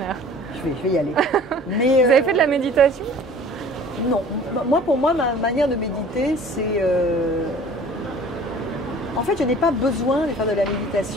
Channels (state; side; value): normal; both; correlation 0.47